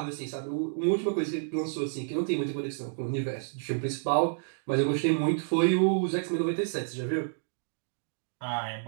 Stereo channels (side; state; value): left; silent; digital silence